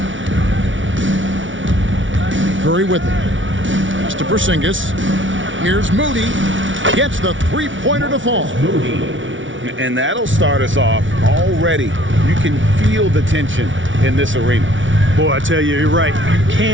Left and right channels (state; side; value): late; left; 0.56 ms